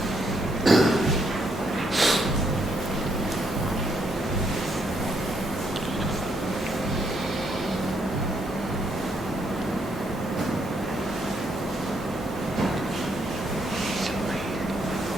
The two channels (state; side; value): normal; both; correlation 0.74